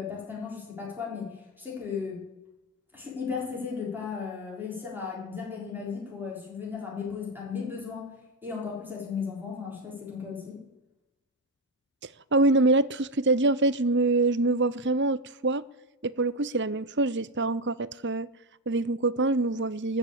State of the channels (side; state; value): both; normal; correlation 0.09